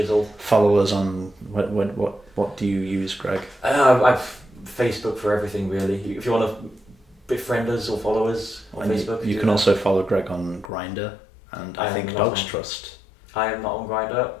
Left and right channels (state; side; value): drops out; right; at 10.7 s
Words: Follow us on what do you use, Greg? I've Facebook for everything really. If you want to befriend us or follow us on Facebook, you can also follow Greg on Grindr and I think Dogs Trust. I am not on Grindr.